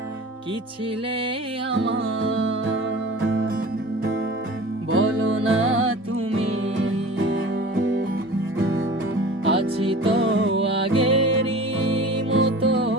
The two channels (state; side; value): normal; both; correlation 0.39